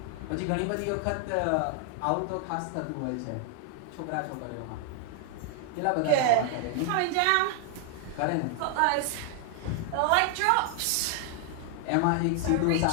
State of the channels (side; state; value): both; different; correlation 0.00